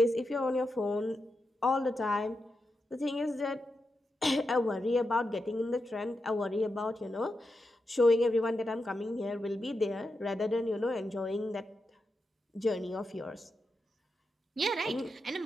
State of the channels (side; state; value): both; normal; correlation 0.88